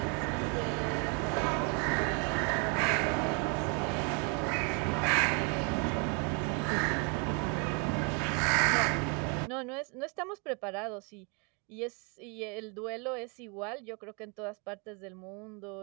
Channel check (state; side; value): quieter; left; 35.0 dB